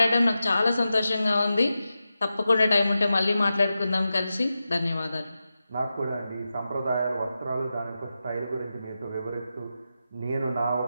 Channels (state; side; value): inverted; both; correlation -0.92